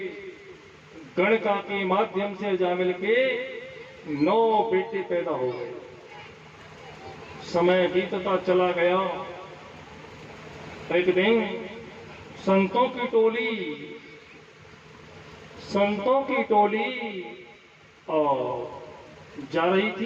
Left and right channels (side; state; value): both; identical; correlation 1.00